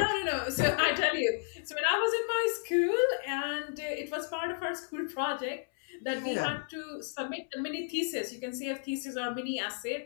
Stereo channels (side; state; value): right; silent; 56 dB below the other